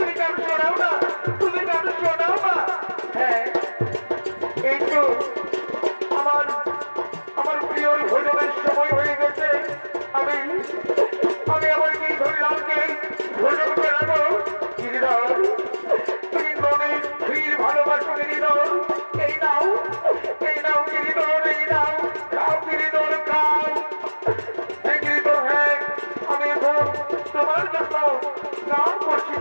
গান শোনাও না, তুমি গান শোনাও না। হ্যাঁ, এই তো আমার প্রিয় ভোজনের সময় হয়ে গেছে। আমি আমার গিরিধর লালকে ভোজন করাবো। গিরিধর, তুমি মনে ফির ভালোবাসো গিরিধর। এই নাও গিরিধর, এই নাও, খাও গিরিধর, খাও। হ্যাঁ গিরিধর, হ্যাঁ, আমি এখন তোমার জন্য গান করছি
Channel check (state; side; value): inverted; both; correlation -1.00